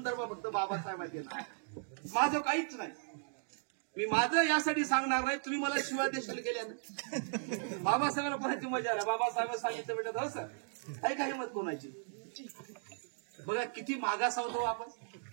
फक्त बाबासाहेबांचे देणार. माझं काहीच नाही. मी माझं यासाठी सांगणार नाही. तुम्ही मला शिवाय देशाला गेल्यानं बाबासाहेबांना कोणाची मजा आला. बाबासाहेब सांगितलं बेटा हो सर, काही काही मत कोणाची. बघा किती मागास होतो आपण.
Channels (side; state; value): left; silent; digital silence